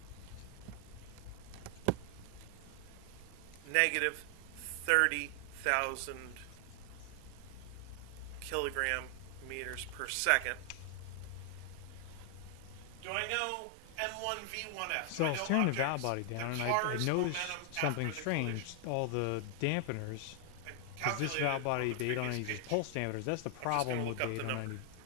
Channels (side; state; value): both; different; correlation 0.00